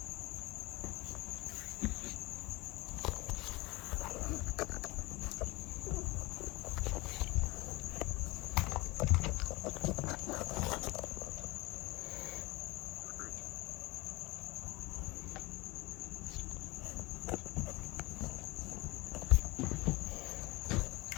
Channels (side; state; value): right; quieter; 22.4 dB